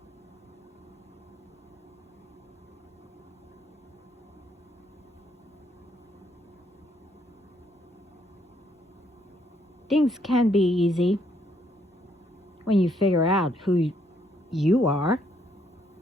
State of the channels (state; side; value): normal; both; correlation 0.71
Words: Things can be easy when you figure out who you are